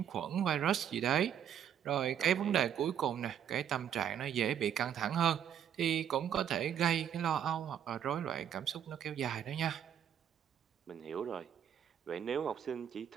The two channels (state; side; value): quieter; left; 9.3 dB